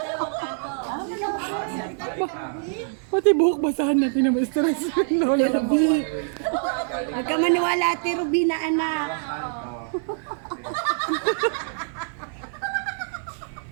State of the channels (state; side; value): silent; left; digital silence